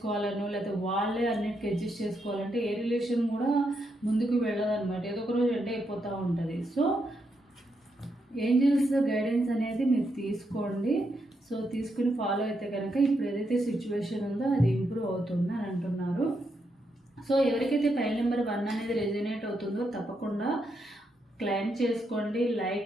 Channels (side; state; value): both; normal; correlation 0.81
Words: లేకపోతే వాళ్ళే అన్నిటికీ అడ్జస్ట్ చేసుకోవాలంటే ఏ రిలేషన్ కూడా ముందుకు వెళ్ళదన్నమాట. ఏదో ఒక రోజు ఎండ్ అయిపోతూ ఉంటుంది. సో ఏంజల్స్ గైడెన్స్ అనేది మీరు తీసుకోండి. సో తీసుకుని ఫాలో అయితే కనుక ఇప్పుడు ఏదైతే సిచ్యువేషన్ ఉందో అది ఇంప్రూవ్ అవుతుంది అని అంటున్నారు. సో ఎవరికైతే ఫైల్ నెంబర్ 1 అనేది రెజనేట్ అవుతుందో తప్పకుండా క్లైమ్ చేసుకోండి.